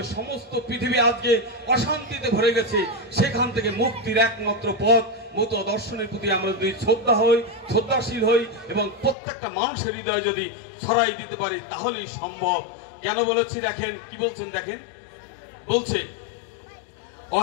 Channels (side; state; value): right; drops out; at 9.2 s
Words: সমস্ত পৃথিবী আজকে অশান্তিতে ভরে গেছে, সেখান থেকে মুক্তির একমাত্র পথ মত দর্শনের প্রতি আমরা যদি শ্রদ্ধাশীল হই এবং প্রত্যেকটা মানুষের হৃদয়ে যদি ছড়াই দিতে পারি তাহলেই সম্ভব। কেন বলেছি দেখেন, কি বলছেন দেখেন। বলছে